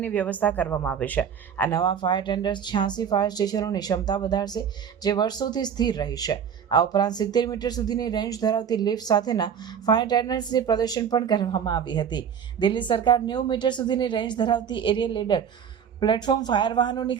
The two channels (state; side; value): quieter; left; 7.9 dB